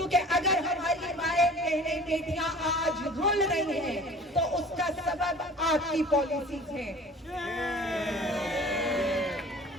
अगर हमारी माएं, बहनें, बेटियां आज रुल रही हैं तो उसका सबब आपकी पॉलिसीज है।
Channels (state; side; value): normal; both; correlation 0.45